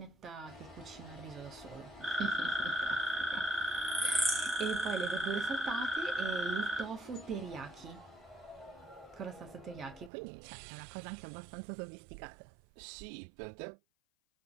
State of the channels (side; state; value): left; drops out; at 10.1 s